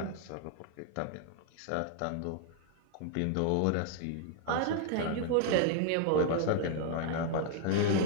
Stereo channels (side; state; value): both; different; correlation 0.00